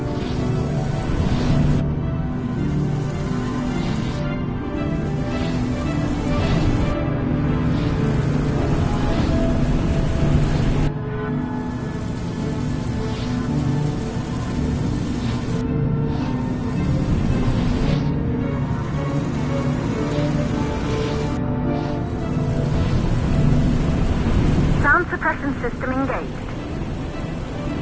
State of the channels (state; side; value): identical; both; correlation 1.00